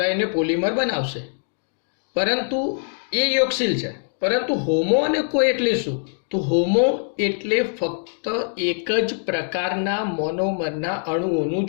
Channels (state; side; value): silent; right; digital silence